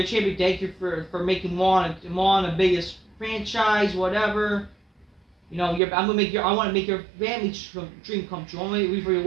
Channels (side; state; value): left; drops out; at 5.8 s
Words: champion. Thank you for making Moana the biggest franchise, whatever. You know, I want to make your family dream come true. I want to make it for your